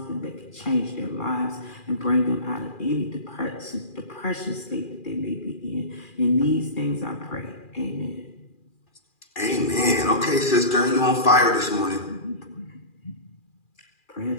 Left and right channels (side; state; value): right; late; 2.4 ms